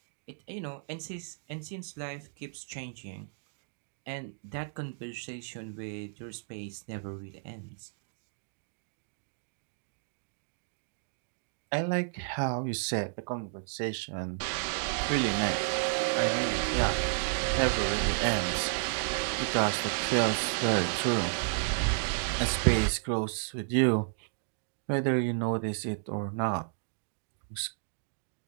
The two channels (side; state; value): left; silent; digital silence